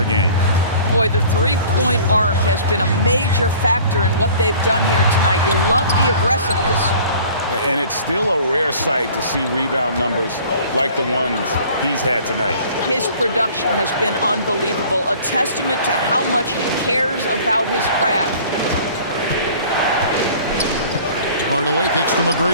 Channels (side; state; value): both; inverted; correlation -0.48